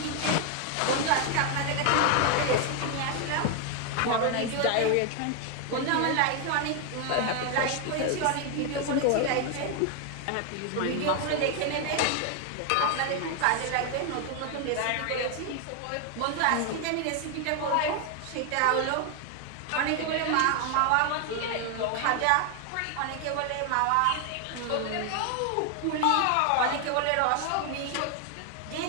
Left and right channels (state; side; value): different; both; correlation 0.01